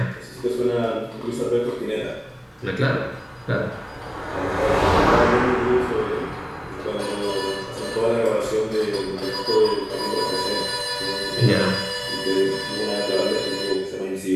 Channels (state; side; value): identical; both; correlation 1.00